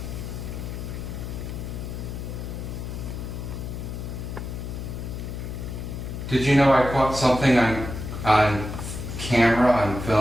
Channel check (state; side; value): noise; left; hum, 6 dB below the sound